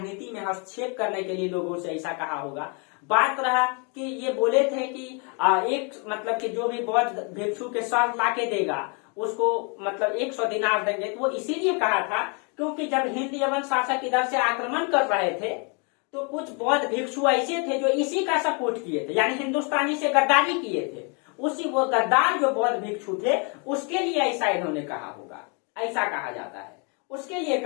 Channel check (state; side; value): quieter; right; 35.0 dB